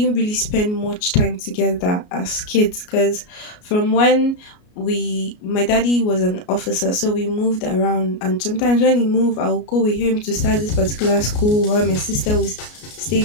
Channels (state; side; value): late; right; 33 ms